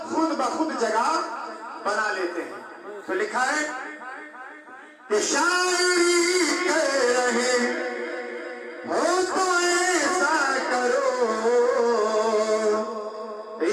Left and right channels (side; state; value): both; identical; correlation 1.00